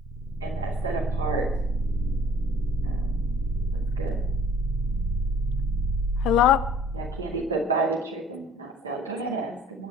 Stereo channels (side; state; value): both; normal; correlation 0.53